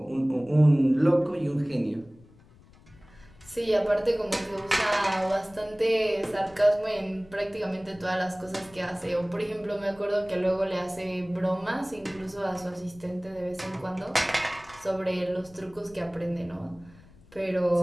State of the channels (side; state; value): left; noise; rumble, 25 dB below the sound